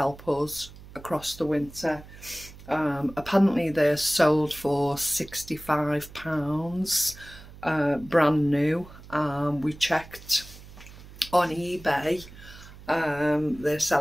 us across the winter. Apparently they're sold for £65, brand new. We checked on eBay, they're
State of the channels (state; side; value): noise; right; hum, 18 dB below the sound